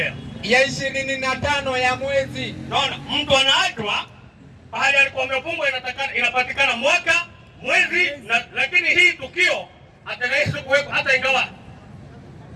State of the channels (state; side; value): identical; both; correlation 1.00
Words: Ya 25 ya mwezi. Naona mtu anaachwa pahali alikuwa amefungwa, inapatikana mwaka, mwezi na, lakini hii tukio atakayesu kuweko hata ingawa